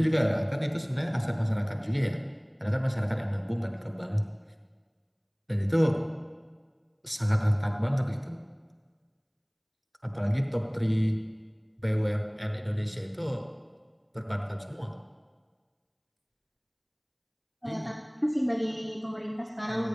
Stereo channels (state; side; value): identical; both; correlation 1.00